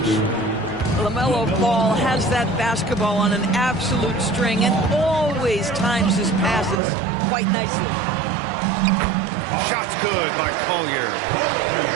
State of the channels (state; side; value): drops out; left; at 6.8 s